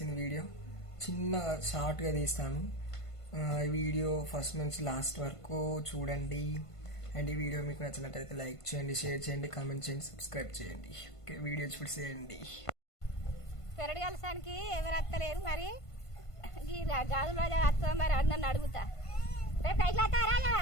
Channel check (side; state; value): right; late; 1.5 ms